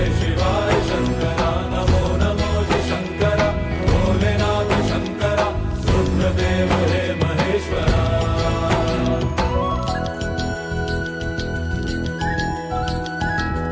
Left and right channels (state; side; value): identical; both; correlation 1.00